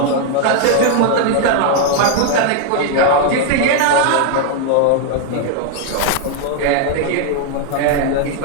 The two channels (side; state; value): both; different; correlation 0.00